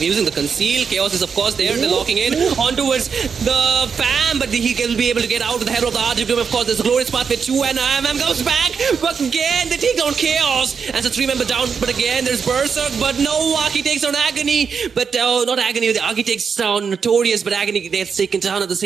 using the conceal. Chaos is of course there, they're locking in on towards the fam, but he will be able to get out of the head of the RGB. Of course, there's a glorious path with 2 and IMM goes back, but again, they take down Chaos. And so 3 member down, but again, there's Berserk, but no, Aki takes down Agony, but not Agony, the Aki takes down Notorious, but Agony gets taken down at the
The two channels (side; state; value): left; quieter; 6.1 dB